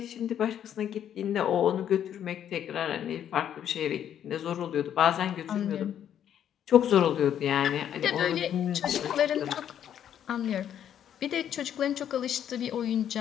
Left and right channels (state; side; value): quieter; right; 9.8 dB